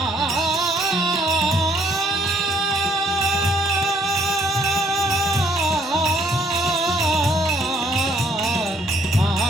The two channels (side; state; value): both; normal; correlation 0.65